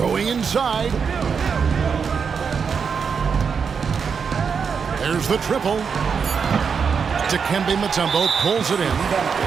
inside. There's the triple. Dikembe Mutombo pulls it in.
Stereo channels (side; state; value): left; quieter; 6.2 dB